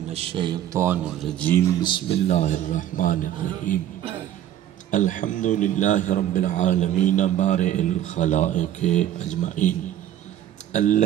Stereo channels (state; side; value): quieter; left; 11.7 dB